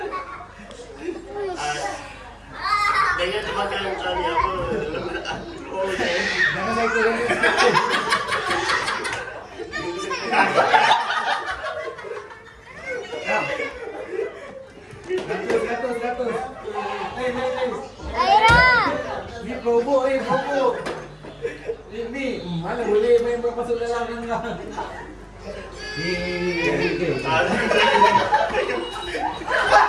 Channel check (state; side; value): identical; both; correlation 1.00